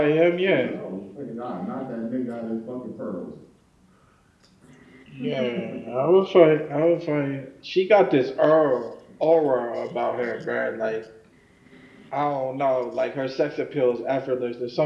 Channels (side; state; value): both; identical; correlation 1.00